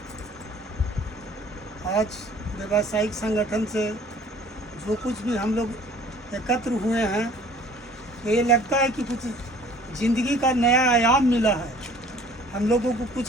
आज व्यावसायिक संगठन से जो कुछ भी हम लोग एकत्र हुए हैं, तो ये लगता है कि कुछ ज़िंदगी का नया आयाम मिला है, हम लोगों को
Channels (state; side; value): normal; both; correlation 0.52